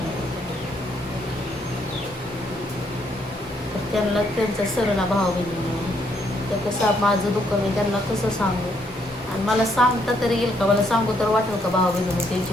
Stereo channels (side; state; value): both; normal; correlation 0.72